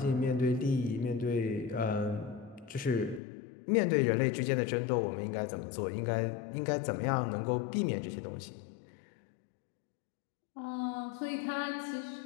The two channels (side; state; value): right; drops out; at 3.2 s